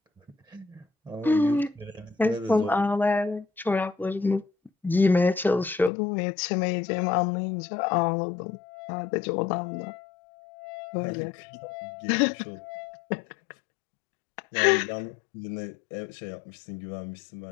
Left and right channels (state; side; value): drops out; right; at 5.9 s